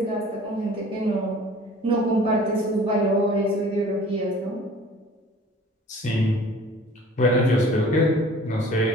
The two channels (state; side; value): normal; both; correlation 0.48